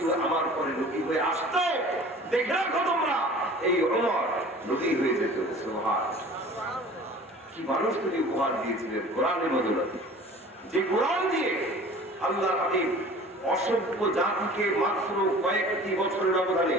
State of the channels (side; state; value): both; normal; correlation 0.44